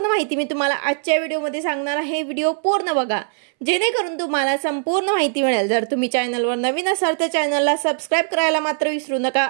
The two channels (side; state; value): left; silent; 65 dB below the other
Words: माहिती मी तुम्हाला आजच्या व्हिडिओमध्ये सांगणार आहे। व्हिडिओ पूर्ण बघा जेणेकरून तुम्हाला संपूर्ण माहिती मिळेल। जर तुम्ही चॅनलवर नवीन असाल तर चॅनलला सबस्क्राइब करायला मात्र विसरू नका